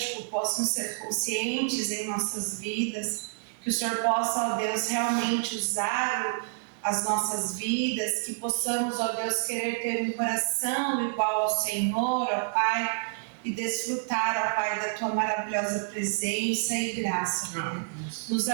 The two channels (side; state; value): left; silent; digital silence